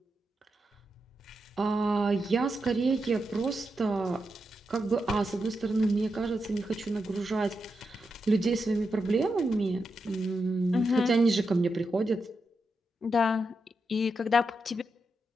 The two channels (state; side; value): normal; both; correlation 0.86